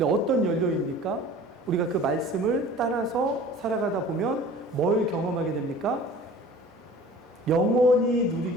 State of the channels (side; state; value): both; normal; correlation 0.45